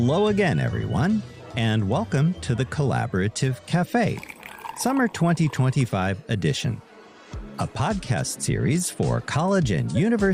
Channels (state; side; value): identical; both; correlation 1.00